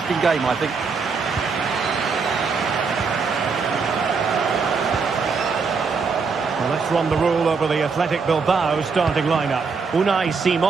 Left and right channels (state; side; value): quieter; left; 5.1 dB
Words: game, I think. Well, let's run the rule over the Athletic Bilbao starting lineup. Unai